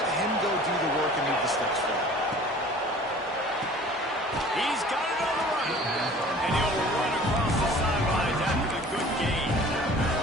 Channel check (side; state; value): both; normal; correlation 0.47